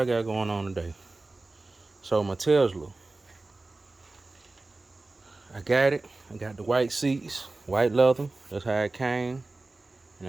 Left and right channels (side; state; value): left; quieter; 3.2 dB